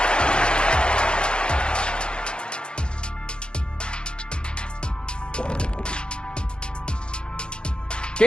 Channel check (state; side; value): late; right; 0.051 ms